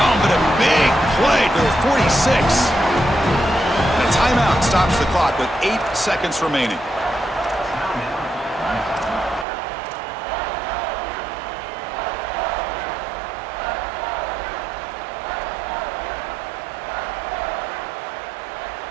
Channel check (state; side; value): drops out; left; at 9.5 s